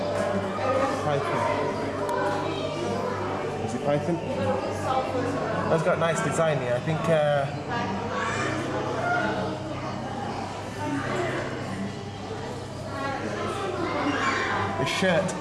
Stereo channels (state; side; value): identical; both; correlation 1.00